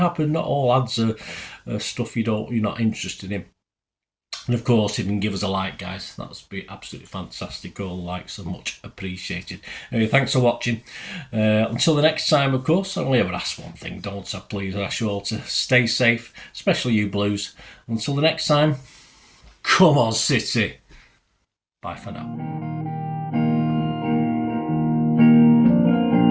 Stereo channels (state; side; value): identical; both; correlation 1.00